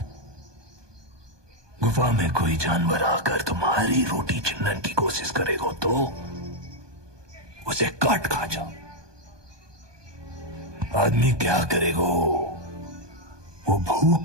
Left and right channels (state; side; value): late; left; 1.2 ms